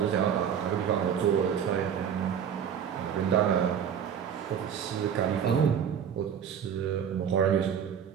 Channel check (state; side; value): quieter; left; 8.2 dB